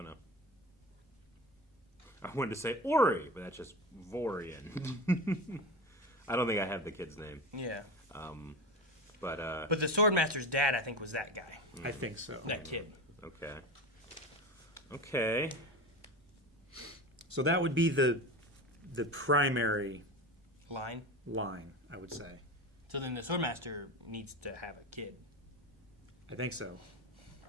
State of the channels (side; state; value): both; normal; correlation 0.27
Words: know. I wanted to say Ori, but that's just Vorian. I don't think I have the kid's name. Yeah. But the Swordmaster's dad, I think, was that guy. I think so. That kid. Okay. So that would be the primary line, I would say. So then the Swordmaster needs to have a kid. I think so.